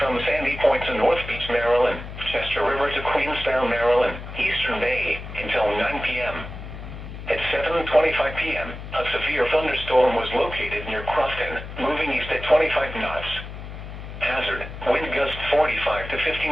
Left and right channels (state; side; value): noise; left; hum, 10 dB below the sound